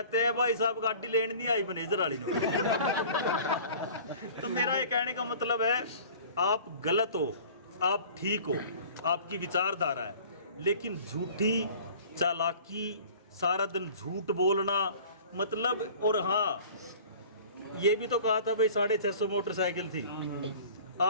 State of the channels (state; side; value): inverted; both; correlation -0.46